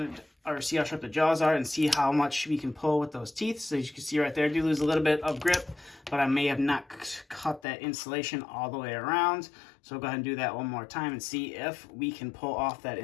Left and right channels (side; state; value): right; drops out; at 7.6 s